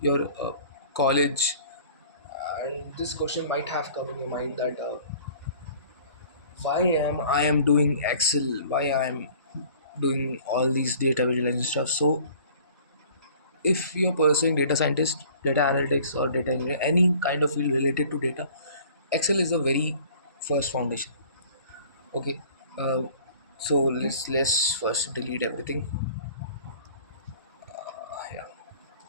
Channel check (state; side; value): inverted; both; correlation -0.50